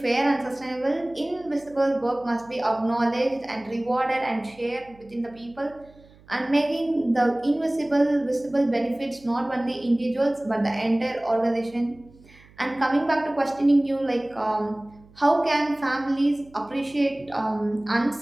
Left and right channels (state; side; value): noise; right; hum, 26 dB below the sound